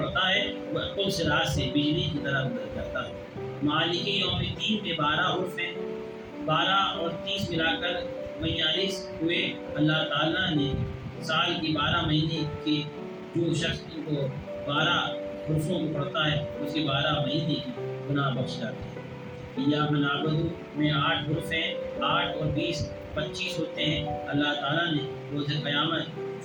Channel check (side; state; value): both; identical; correlation 1.00